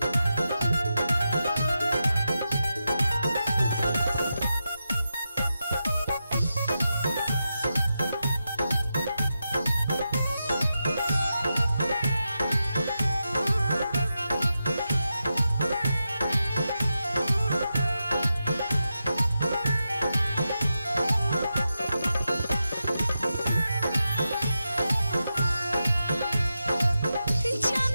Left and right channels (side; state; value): both; inverted; correlation -0.89